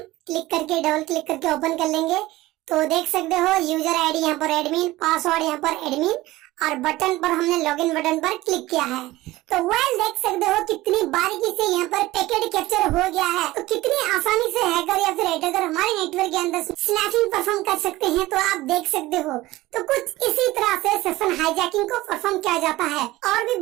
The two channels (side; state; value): left; quieter; 18.0 dB